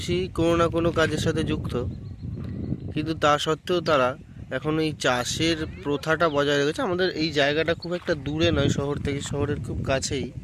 কোনো না কোনো কাজের সাথে যুক্ত, কিন্তু তা সত্ত্বেও তারা এখন এই চাষের প্রথাটা বজায় রেখেছে। আমাদের এই জায়গাটা খুব একটা দূরে নয় শহর থেকে, শহরের খুব কাছেই,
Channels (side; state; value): both; identical; correlation 1.00